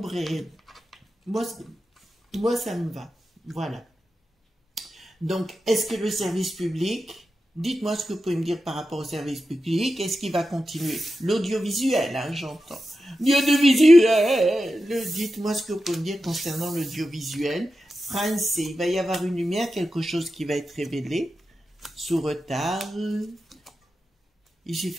et moi, ça me va. Voilà. Donc, est-ce que le service public, dites-moi ce que vous pouvez me dire par rapport au service public, est-ce qu'il va continuer? L'audiovisuel, hein, j'entends. L'audiovisuel! Dites-moi ce que vous pouvez me dire concernant l'audiovisuel français. Il va y avoir une lumière, quelque chose qui va être révélé, sous retard. Ici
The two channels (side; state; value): both; normal; correlation 0.91